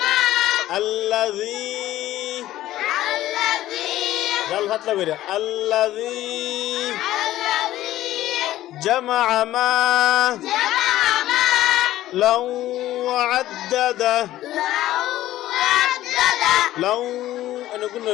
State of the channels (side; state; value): right; quieter; 14.5 dB